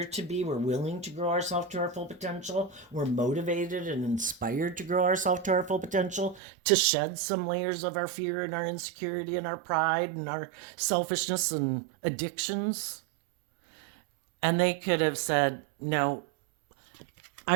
to be. We're willing to grow ourselves to our full potential. We're motivated and inspired to grow ourselves to our full potential, to shed some layers of our fear and our insecurity and our pride and our selfishness and addictions. And they could have said, no, I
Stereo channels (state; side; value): drops out; left; at 6.4 s